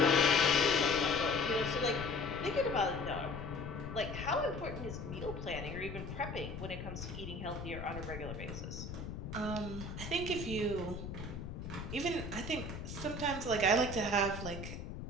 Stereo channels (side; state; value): left; noise; rumble, 8 dB below the sound